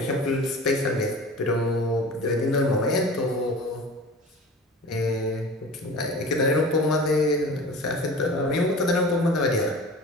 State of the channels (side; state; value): both; normal; correlation 0.38